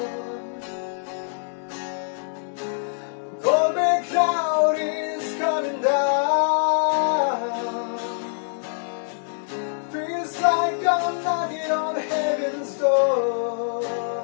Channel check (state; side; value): silent; right; digital silence